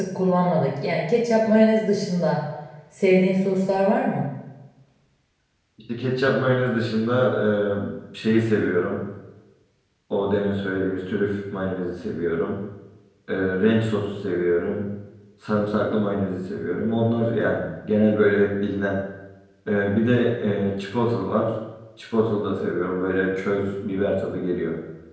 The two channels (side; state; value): both; identical; correlation 1.00